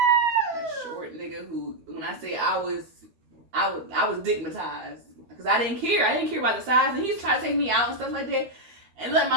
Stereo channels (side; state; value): left; late; 12 ms